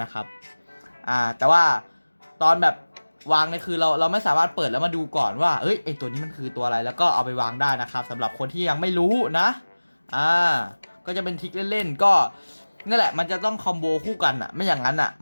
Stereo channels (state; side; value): inverted; both; correlation -1.00